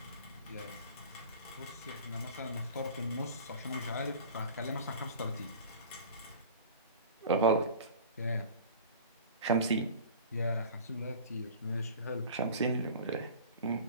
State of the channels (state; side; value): inverted; both; correlation -0.41